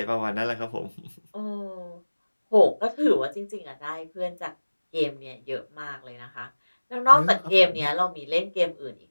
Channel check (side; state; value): both; inverted; correlation -1.00